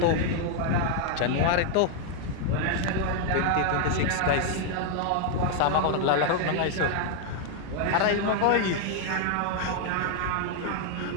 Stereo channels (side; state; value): both; different; correlation 0.00